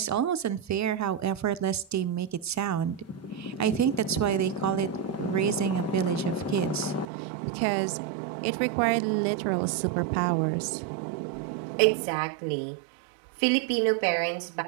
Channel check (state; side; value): drops out; left; at 7.1 s